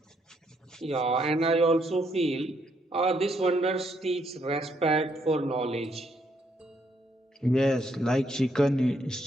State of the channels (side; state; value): both; normal; correlation 0.73